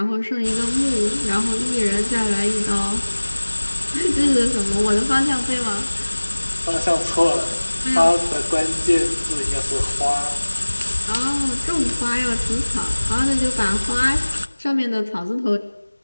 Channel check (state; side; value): inverted; both; correlation -1.00